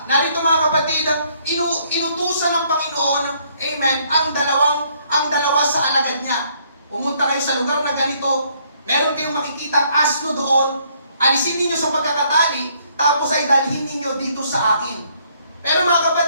Narito mga kapatid, inutusan ng Panginoon, amen, ang dalawa sa alagad niya. Pumunta kayo sa lugar na ganito, meron kayong makikitang asno doon, alisin ninyo sa pagkakatali, tapos ay dalhin ninyo dito sa akin. Pero mga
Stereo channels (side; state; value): both; inverted; correlation -0.67